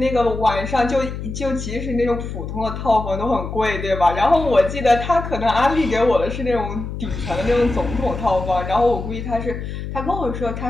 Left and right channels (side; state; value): left; noise; hum, 7 dB below the sound